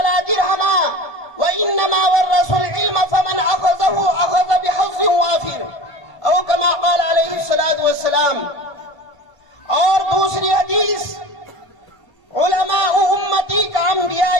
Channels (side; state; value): right; late; 1.3 ms